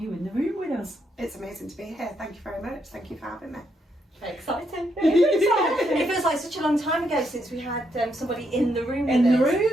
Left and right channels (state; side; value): normal; both; correlation 0.78